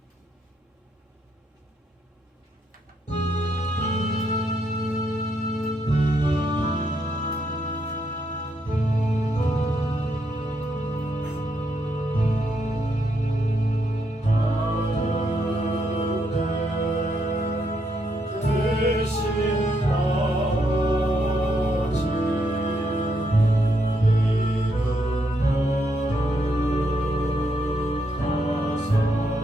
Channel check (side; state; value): both; normal; correlation 0.77